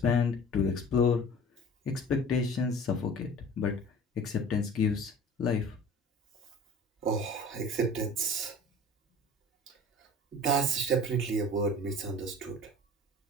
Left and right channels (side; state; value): both; normal; correlation 0.42